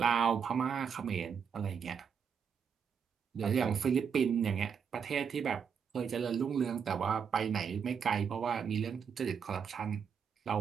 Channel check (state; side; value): quieter; left; 6.9 dB